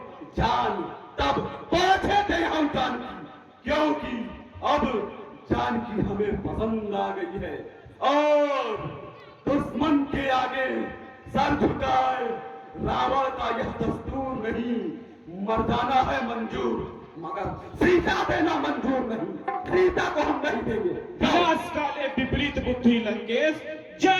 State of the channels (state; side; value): identical; both; correlation 1.00